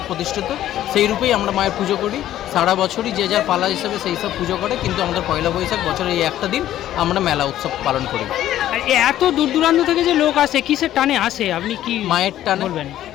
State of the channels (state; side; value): quieter; right; 12.7 dB